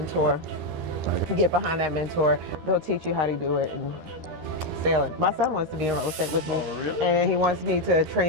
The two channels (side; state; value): left; late; 13 ms